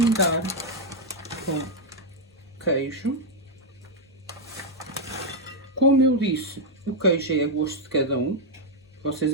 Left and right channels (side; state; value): both; normal; correlation -0.01